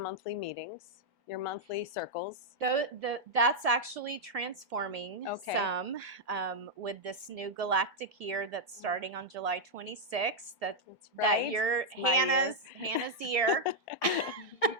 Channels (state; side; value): normal; both; correlation -0.03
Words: meetings, your monthly circles. That's actually transforming some with this new galactic year that's starting on July 26th. That year, Hannah's year.